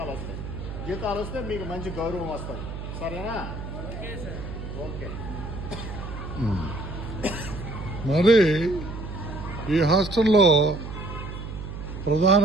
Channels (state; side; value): noise; right; hum, 8 dB below the sound